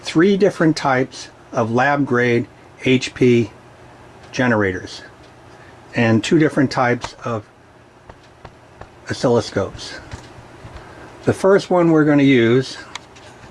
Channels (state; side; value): identical; both; correlation 1.00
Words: 3 different types of lab-grade HP generators and 2 different types of oscilloscopes. The first one we're going to use,